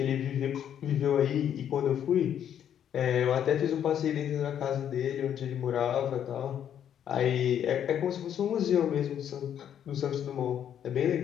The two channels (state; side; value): quieter; right; 9.5 dB